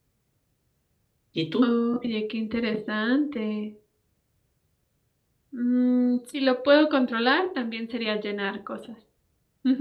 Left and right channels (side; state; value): both; identical; correlation 1.00